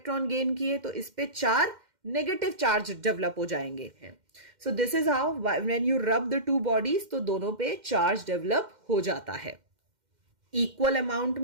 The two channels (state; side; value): late; left; 2.1 ms